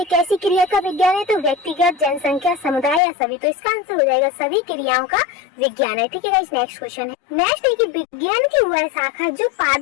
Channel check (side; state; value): right; drops out; at 3.0 s